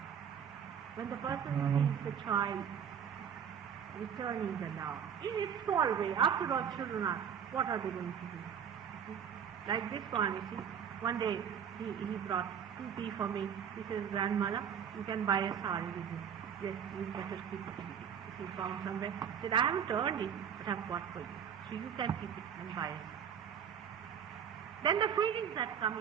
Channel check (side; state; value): left; quieter; 8.1 dB